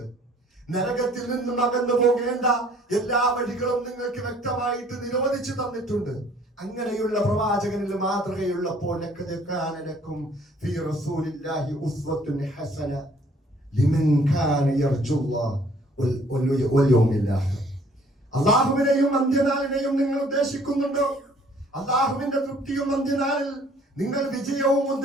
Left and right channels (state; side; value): normal; both; correlation 0.58